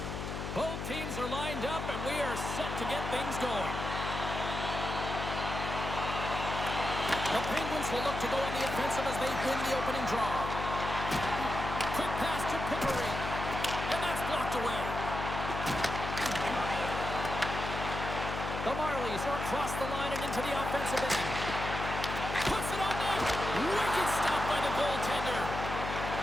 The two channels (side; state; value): left; noise; hum, 5 dB below the sound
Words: Both teams are lined up and we are set to get things going. The Penguins will look to go on the offensive as they win the opening draw. Quick pass to Pickering, and that's blocked away. The Marlies are across the line and into the offensive end. Puts it on net. Wicked stop by the goaltender.